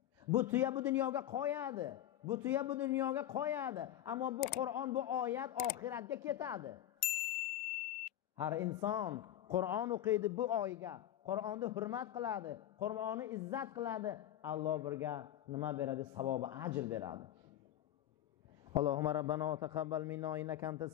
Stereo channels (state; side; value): quieter; right; 12.1 dB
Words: Bu tuya bu dunyoga qo'yadi. Bu tuya bu dunyoga qo'yadi. Ammo bu Qur'on, bu oyat oxiratga ketadi. Har inson Qur'on o'qiydi bu oyga. Qur'onni hurmat qiladi. Qur'onni izzat qiladi. Alloh birga nima beradi? Savobi, ajr beradi. Allohumma rabbana taqabbal minna innaka antas